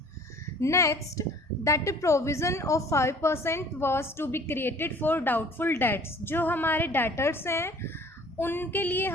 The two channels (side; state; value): both; normal; correlation 0.51